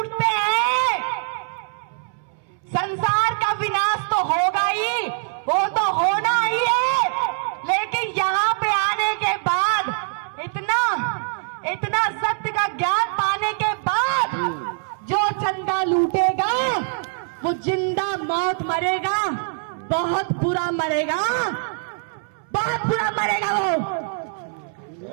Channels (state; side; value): silent; left; 63 dB below the other